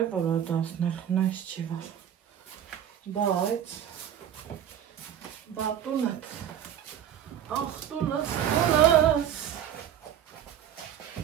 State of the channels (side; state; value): left; quieter; 9.8 dB